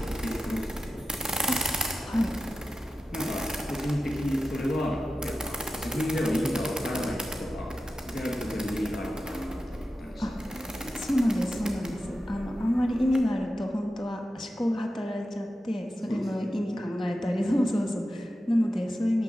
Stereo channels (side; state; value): both; normal; correlation 0.92